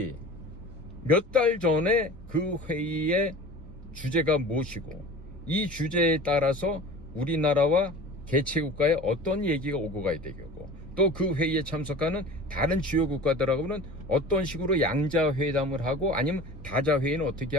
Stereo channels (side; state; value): both; normal; correlation 0.39